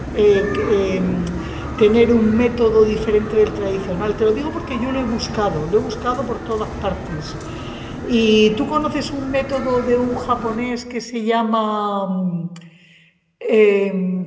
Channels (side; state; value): both; identical; correlation 1.00